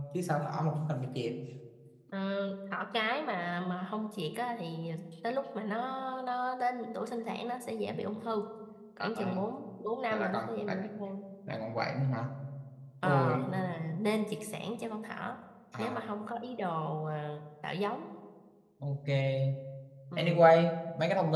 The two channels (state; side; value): identical; both; correlation 1.00